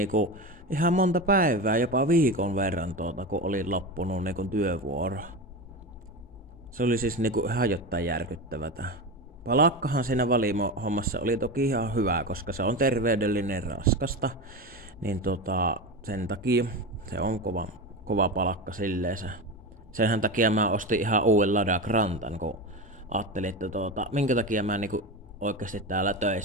ihan monta päivää, jopa viikon verran kun oli loppunut niinku työvuoro. Se oli siis niinku ihan jotain järkyttävätä. Palakkahan siinä valimo-hommassa oli toki ihan hyvä, koska se on terveydellinen raskasta. Niin sen takia se on kova palakka silleensä. Senhän takia mä ostin ihan uuden Lada Grantan, kun ajattelin, että minkä takia mä niinku oikeasti täällä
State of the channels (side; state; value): both; normal; correlation 0.22